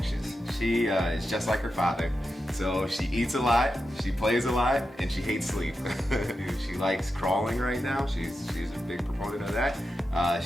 She is just like her father. So she eats a lot, she plays a lot, and she hates sleep. She likes crawling right now. She's a big proponent of that.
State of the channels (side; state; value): both; normal; correlation 0.89